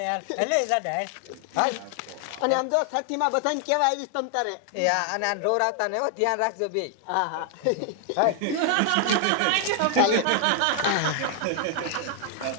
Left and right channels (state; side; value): different; both; correlation 0.00